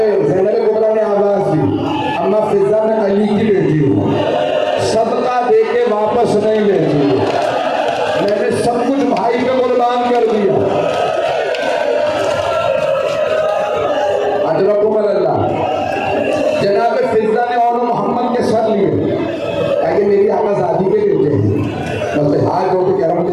ज़ैनब कुबरा ने आवाज दी, अम्मा फिजा में अली की बेटी हूँ, सदका दे के वापस नहीं लेती, मैंने सब कुछ भाई पे कुर्बान कर दिया। अजरकुम अल्लाह। जनाब फिजा ने और मोहम्मद के सर लिए, ताकि मेरी आज़ादी के बेटे हैं, बस हाथ जोड़ के कह रहा हूँ,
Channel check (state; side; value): identical; both; correlation 1.00